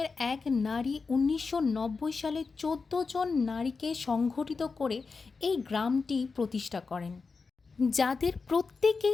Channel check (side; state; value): right; quieter; 4.6 dB